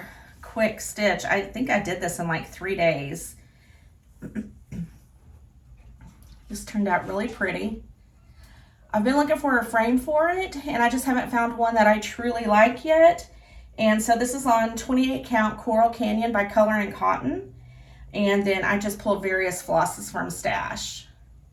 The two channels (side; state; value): both; identical; correlation 1.00